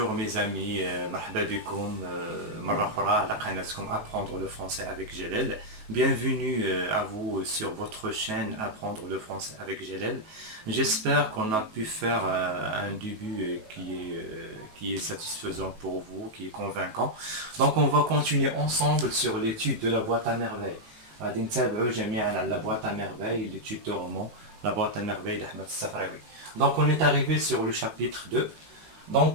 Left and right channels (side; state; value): left; late; 19 ms